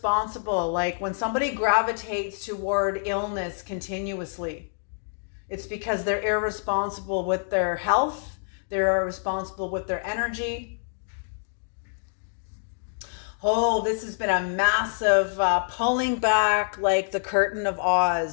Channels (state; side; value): silent; right; digital silence